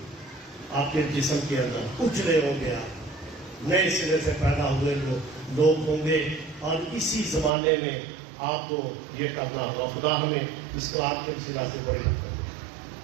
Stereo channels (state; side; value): drops out; left; at 7.5 s